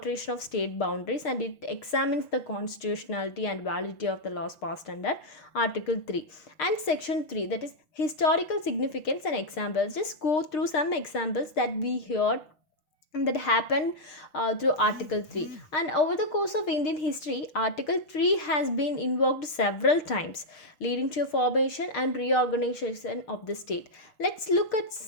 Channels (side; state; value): right; late; 6.5 ms